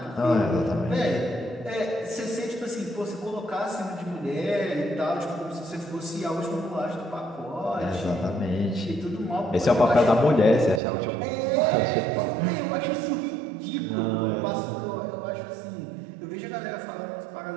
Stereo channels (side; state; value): left; drops out; at 10.8 s